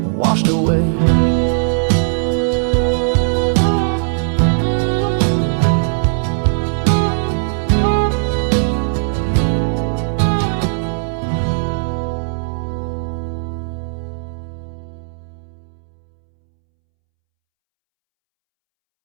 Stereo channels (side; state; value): left; silent; 68 dB below the other